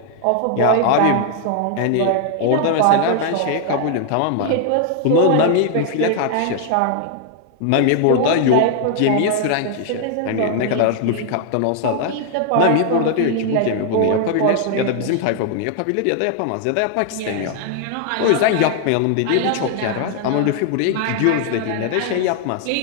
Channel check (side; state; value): both; different; correlation 0.00